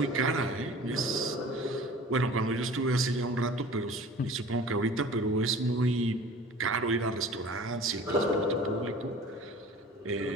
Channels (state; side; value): normal; both; correlation 0.43